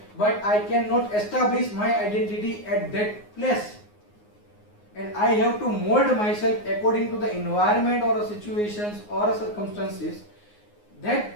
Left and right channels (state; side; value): late; right; 9.6 ms